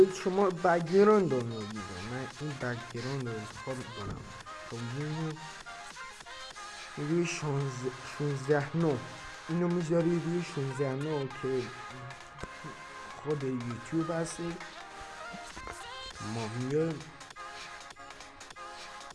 شما بک‌گراند رو میگیره. من این بک‌گراند رو انتخاب میکنم تا روی 16:9 اینو میذاری روی 16:9 که خود یوتیوب هستی. ما میایم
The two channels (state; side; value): identical; both; correlation 1.00